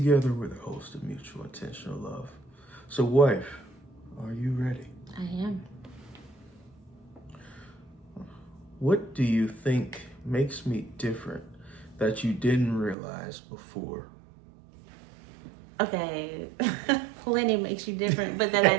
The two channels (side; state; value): left; drops out; at 13.0 s